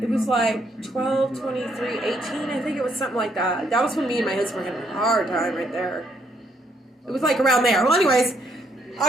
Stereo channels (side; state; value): both; normal; correlation 0.72